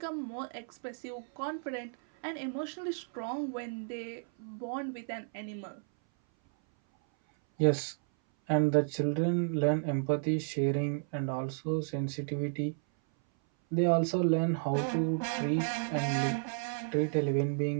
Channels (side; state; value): left; silent; 56 dB below the other